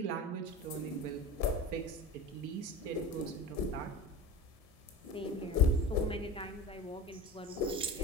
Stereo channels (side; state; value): both; normal; correlation 0.31